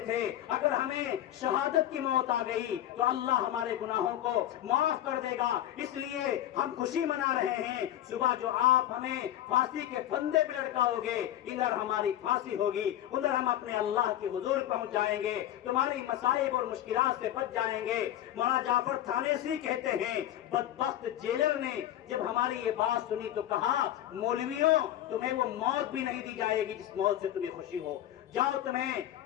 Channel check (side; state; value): right; quieter; 12.6 dB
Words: थे अगर हमें शहादत की मौत आ गई तो अल्लाह हमारे गुनाहों को माफ कर देगा, इसलिए हम खुशी मना रहे हैं। सुबह जो आप हमें फांसी के फंदे पे लटकाओगे, इधर हमारी फांसी होगी, उधर हम अपने अल्लाह के हुजूर पहुंच जाएंगे, तुम्हारी मसाइब और मुश्किलात से बच जाएंगे। मौलाना जाफर थानेसी कहते हैं बदबख्त जेलर ने जब हमारी ये बात सुनी तो कहा मौलवियों तुम्हें वो मौत भी नहीं दी जाएगी जिस मौत से तुम्हें खुशी हो, जाओ तुम्हें